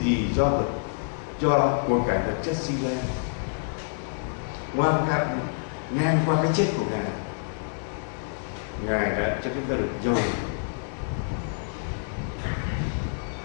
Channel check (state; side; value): silent; right; digital silence